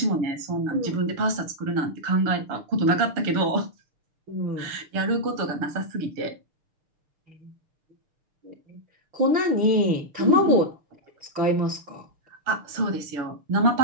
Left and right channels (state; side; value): late; left; 6.6 ms